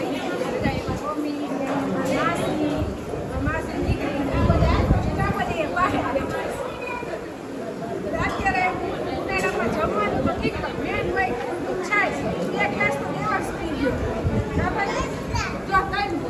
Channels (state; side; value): identical; both; correlation 1.00